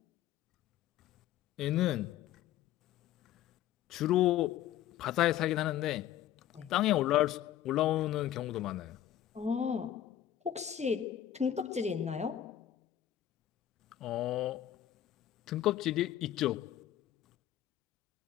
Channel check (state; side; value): quieter; right; 11.7 dB